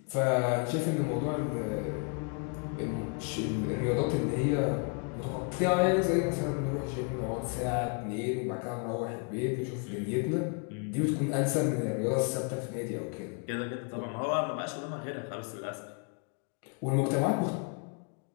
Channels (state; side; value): quieter; right; 37.0 dB